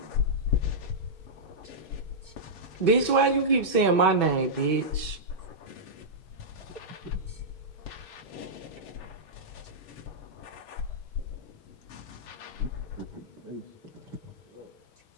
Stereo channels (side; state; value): right; late; 6.1 ms